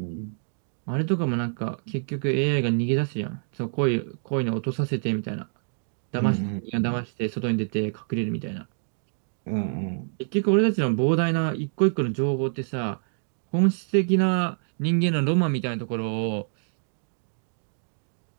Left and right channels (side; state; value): left; silent; digital silence